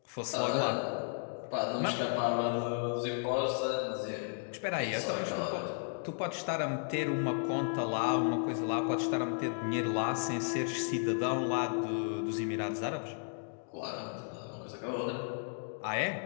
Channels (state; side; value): silent; right; digital silence